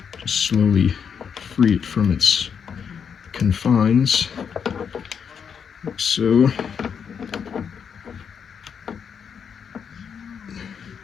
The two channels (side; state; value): right; quieter; 7.1 dB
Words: Just slowly free it from its confines, like so.